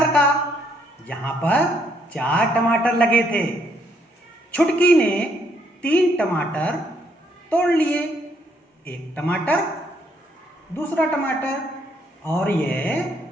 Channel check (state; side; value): normal; both; correlation 0.71